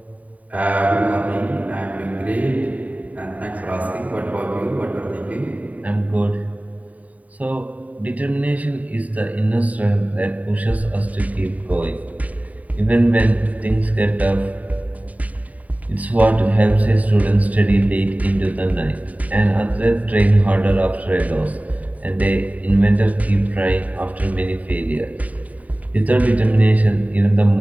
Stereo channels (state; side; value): late; left; 0.071 ms